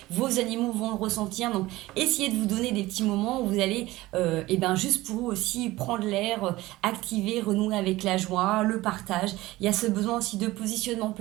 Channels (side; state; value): left; quieter; 18.3 dB